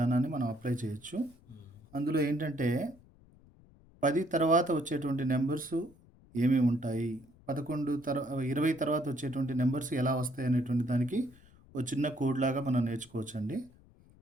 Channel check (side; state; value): left; noise; rumble, 26 dB below the sound